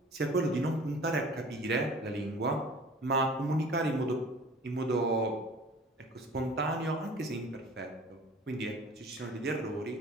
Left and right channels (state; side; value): normal; both; correlation 0.46